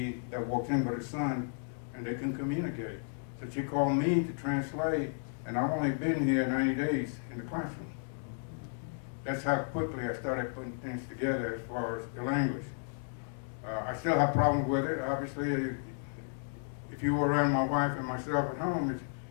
that walks in with her son, and they can communicate. So she called me to translate, and I've only been here 90 days in the classroom. That's how quickly I started putting things together as far as the language. I still have problems with it. Obviously, if you were around my wife and myself at home,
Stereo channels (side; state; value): right; silent; digital silence